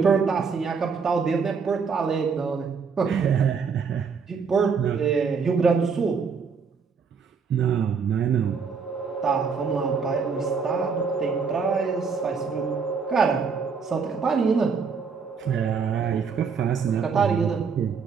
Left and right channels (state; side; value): quieter; left; 5.7 dB